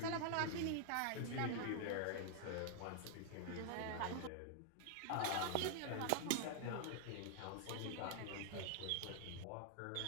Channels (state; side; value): different; both; correlation 0.00